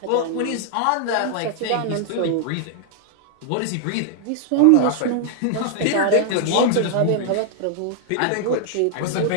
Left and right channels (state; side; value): different; both; correlation 0.00